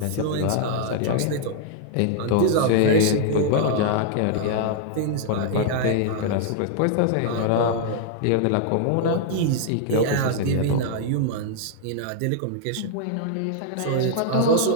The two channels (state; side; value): different; both; correlation -0.01